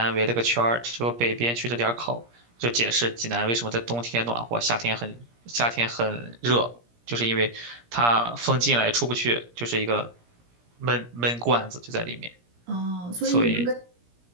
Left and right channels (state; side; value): late; left; 17 ms